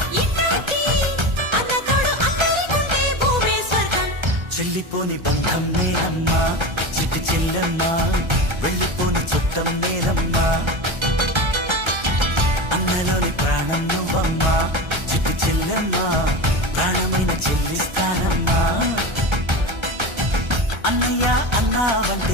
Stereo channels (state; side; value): late; left; 1.3 ms